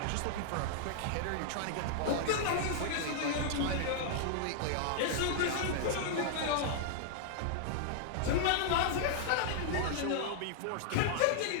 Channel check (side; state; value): both; different; correlation -0.01